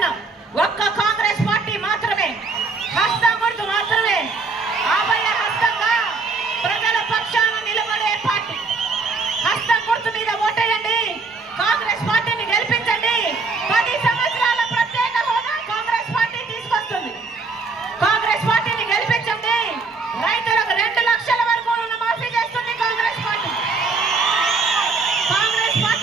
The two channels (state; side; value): quieter; left; 4.1 dB